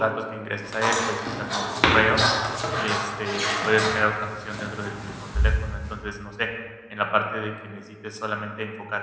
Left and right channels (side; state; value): both; identical; correlation 1.00